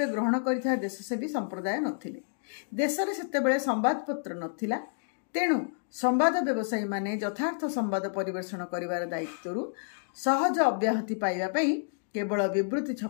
ଗ୍ରହଣ କରିଥିବା ଦେଶସେବୀ ସମ୍ପ୍ରଦାୟ ନଥିଲେ। ଦେଶରେ ସେତେବେଳେ ସମ୍ବାଦପତ୍ର ନଥିଲା। ତେଣୁ ସମ୍ବାଦ ବ୍ୟବସାୟୀମାନେ ଯଥାର୍ଥ ସମ୍ବାଦ ପରିବେଷଣ କରିବାର ଦାୟିତ୍ୱରୁ ସହଜ ଅବ୍ୟାହତି ପାଇବା ପାଇଁ କେବଳ ବିବୃତି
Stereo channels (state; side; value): silent; right; digital silence